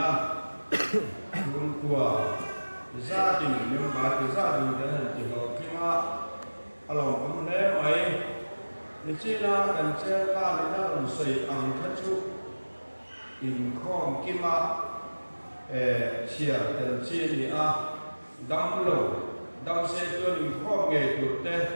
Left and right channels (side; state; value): both; inverted; correlation -1.00